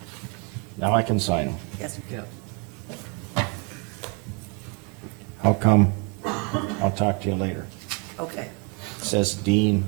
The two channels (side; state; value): left; quieter; 32.3 dB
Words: Now I can sign them. yes, Yeah. How come? I'll talk to you later. okay. Says Dean,